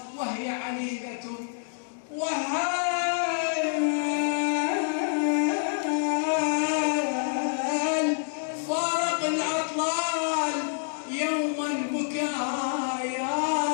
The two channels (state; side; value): silent; right; digital silence